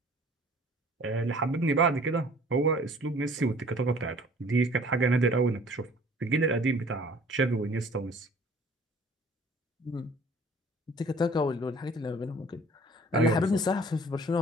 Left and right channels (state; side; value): normal; both; correlation 0.51